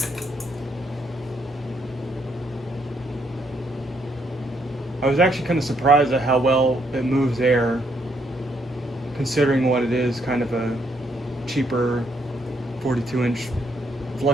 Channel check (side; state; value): both; normal; correlation 0.73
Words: I was actually kind of surprised at how well it moves air, considering what it is, kind of a cheaper 42-inch